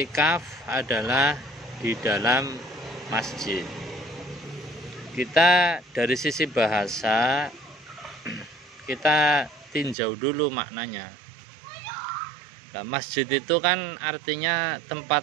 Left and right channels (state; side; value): drops out; left; at 10.0 s